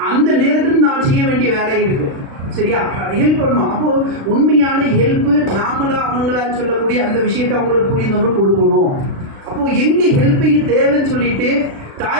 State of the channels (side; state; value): left; late; 36 ms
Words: அந்த நேரத்தில் நான் செய்ய வேண்டிய வேலை இருக்குது. சரியா? ஹெல்ப் பண்ணுவோம். அப்போது உண்மையான ஹெல்ப்பு நாமளா அவங்களா சொல்லக்கூடிய அந்த விஷயத்தை அவங்களுக்கு புரிந்தவங்க கொடுக்கணும். அப்போது எங்கே ஹெல்ப்பிங் தேவைன்னு சொல்லிட்டு